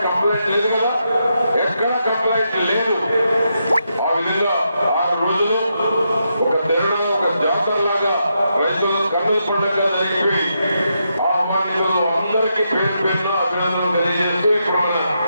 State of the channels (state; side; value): inverted; both; correlation -0.83